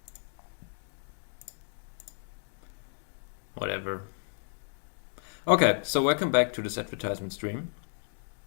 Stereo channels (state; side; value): silent; right; 56 dB below the other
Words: Whatever. Okay, so welcome back to this advertisement stream.